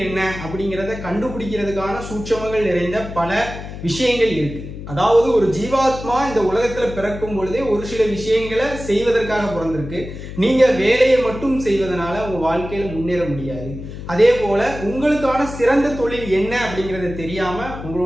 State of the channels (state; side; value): noise; left; hum, 10 dB below the sound